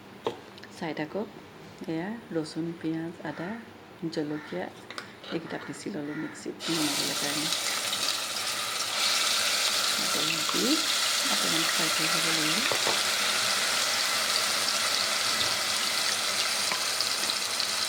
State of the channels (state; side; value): identical; both; correlation 1.00